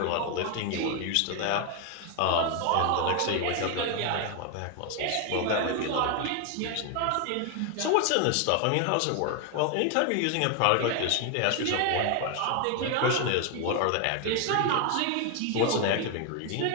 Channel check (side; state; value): both; different; correlation 0.01